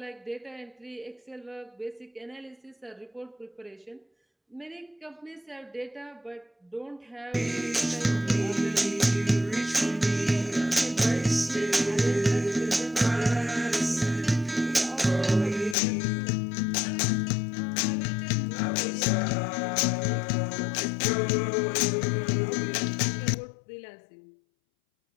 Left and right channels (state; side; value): drops out; right; at 15.8 s